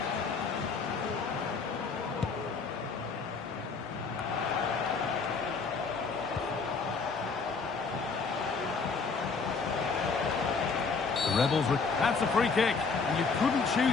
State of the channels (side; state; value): right; quieter; 4.8 dB